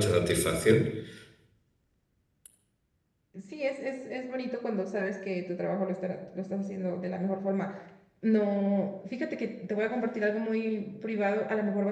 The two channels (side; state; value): both; identical; correlation 1.00